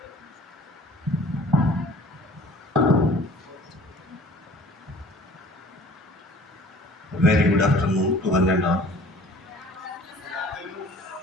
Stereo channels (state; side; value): normal; both; correlation 0.49